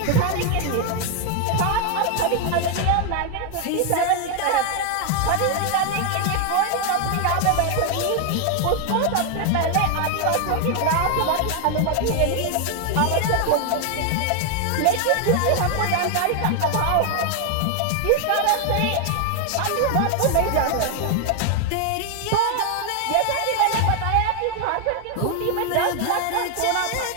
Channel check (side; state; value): both; different; correlation 0.00